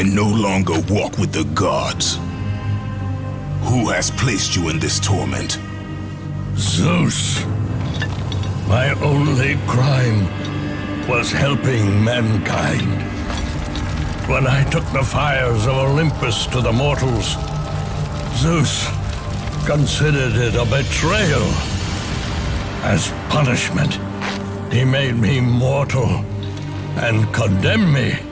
no longer walk with the gods. Who has placed you in this torment? Zeus. My only crime was helping mankind. When I took the fires of Olympus to the mortals, Zeus considered it a betrayal. As punishment, he made me mortal and condemned me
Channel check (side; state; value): both; identical; correlation 1.00